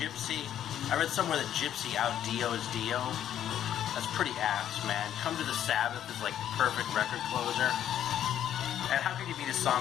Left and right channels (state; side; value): quieter; right; 10.6 dB